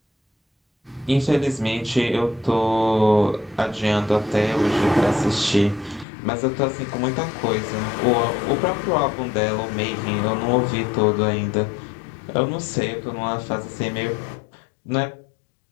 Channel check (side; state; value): right; drops out; at 6.1 s